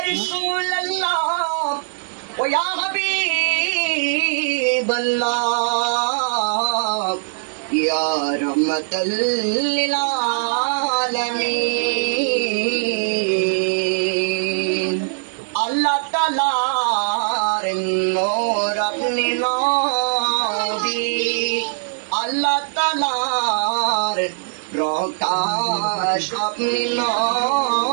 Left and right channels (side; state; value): left; silent; digital silence